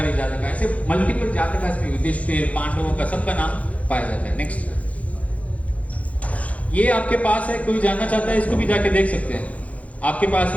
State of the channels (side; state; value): right; late; 0.067 ms